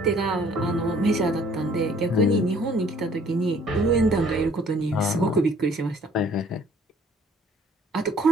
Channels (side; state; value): both; normal; correlation 0.58